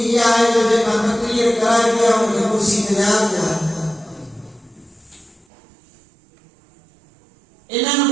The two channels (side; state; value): left; drops out; at 5.5 s